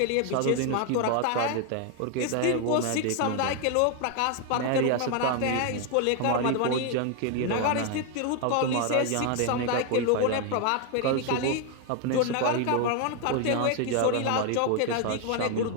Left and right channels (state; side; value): different; both; correlation 0.01